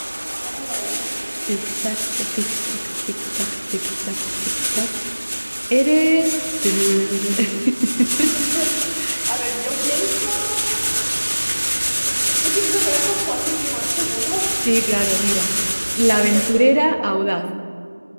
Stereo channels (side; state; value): both; inverted; correlation -1.00